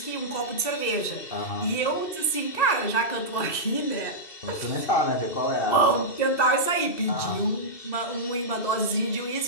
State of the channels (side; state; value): right; late; 2.6 ms